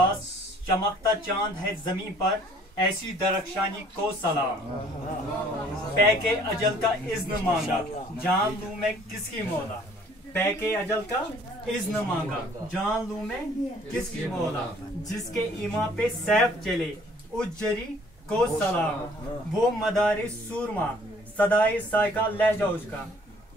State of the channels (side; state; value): both; normal; correlation 0.57